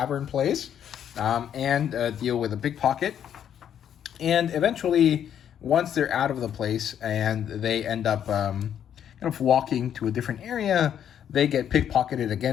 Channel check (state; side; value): quieter; right; 9.4 dB